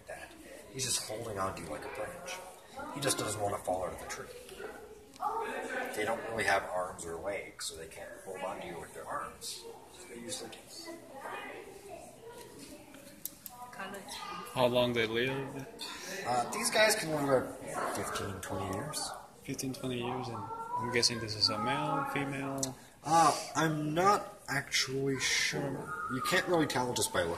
that. He's just holding on to you like a branch. He just doesn't want to fall out of the tree. They don't really have arms or legs, so they can't hold on to you with their arms. So they use their teeth. How long they live? These guys can live about 15, 20 years. 15, 20 years, and I'm guessing this is a male, female. I'm not actually sure. You can't really tell just by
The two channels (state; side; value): identical; both; correlation 1.00